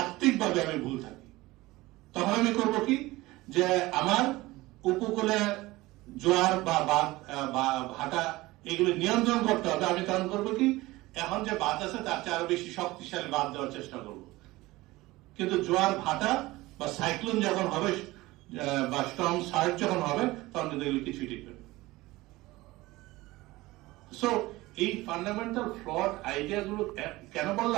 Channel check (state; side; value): quieter; left; 19.6 dB